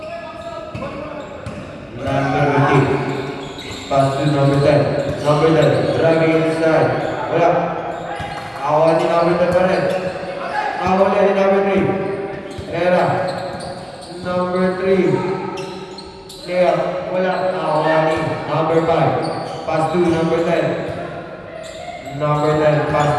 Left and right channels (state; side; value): identical; both; correlation 1.00